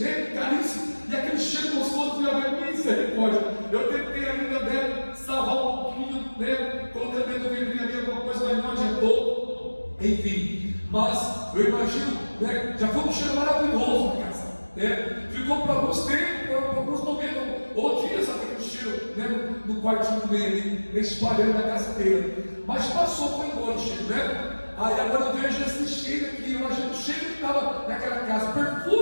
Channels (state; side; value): inverted; both; correlation -1.00